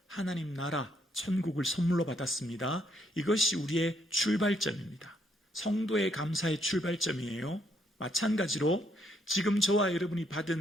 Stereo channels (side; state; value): both; normal; correlation 0.72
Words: 하나님 나라, 천국을 선물로 받았습니다. 이것이 우리의 출발점입니다. 성도의 감사의 출발점이에요. 마찬가지로 지금 저와 여러분이